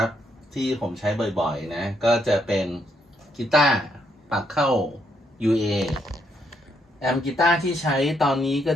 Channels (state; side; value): normal; both; correlation 0.75